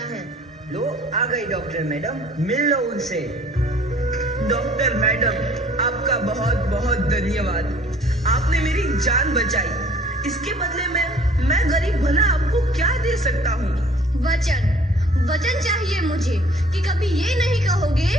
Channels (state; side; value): normal; both; correlation 0.54